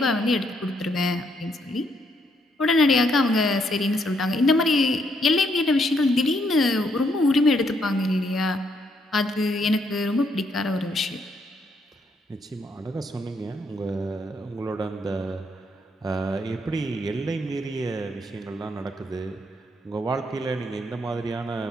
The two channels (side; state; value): both; normal; correlation 0.74